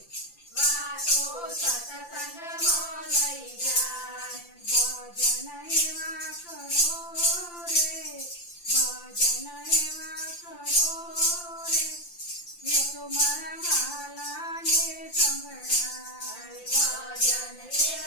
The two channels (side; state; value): right; late; 5.8 ms